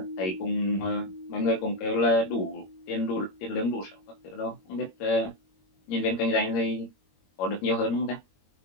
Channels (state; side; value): late; right; 21 ms